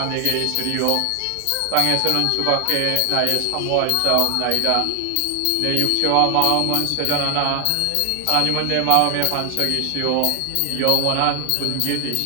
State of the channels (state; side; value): different; both; correlation 0.00